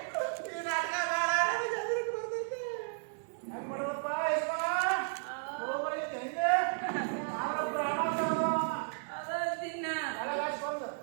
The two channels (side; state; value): left; silent; digital silence